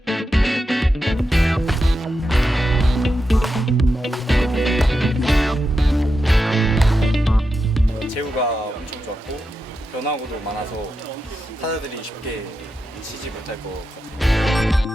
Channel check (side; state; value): both; normal; correlation 0.88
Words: 제구가 엄청 좋았고 변화구도 많아서 타자들이 쉽게 치지 못할 것 같아요.